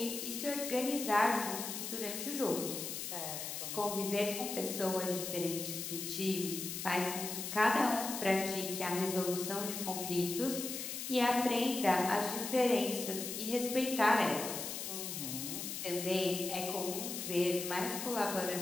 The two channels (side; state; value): left; noise; hiss, 5 dB below the sound